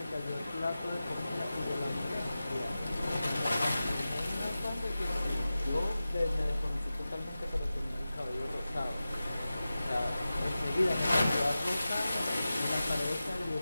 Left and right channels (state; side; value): inverted; both; correlation -0.94